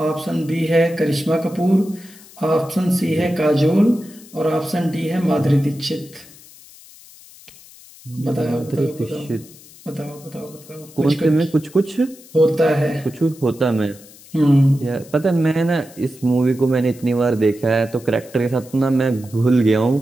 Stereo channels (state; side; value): noise; left; hiss, 22 dB below the sound